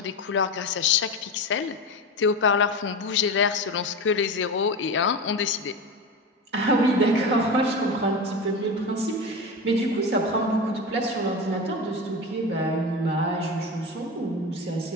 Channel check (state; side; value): normal; both; correlation 0.23